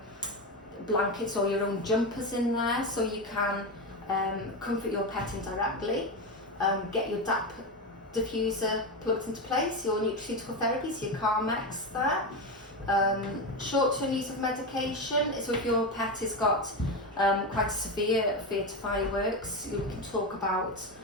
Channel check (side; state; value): both; normal; correlation 0.16